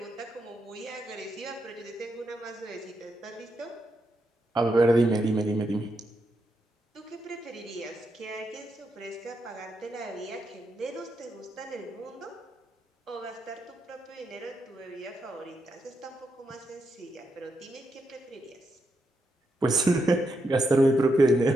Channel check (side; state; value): both; normal; correlation 0.82